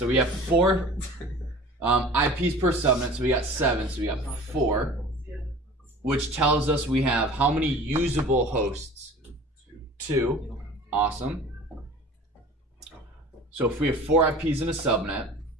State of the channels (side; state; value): both; normal; correlation 0.42